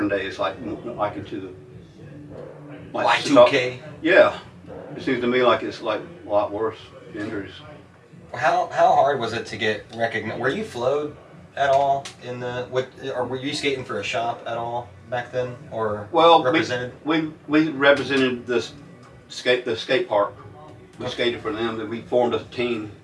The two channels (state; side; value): identical; both; correlation 1.00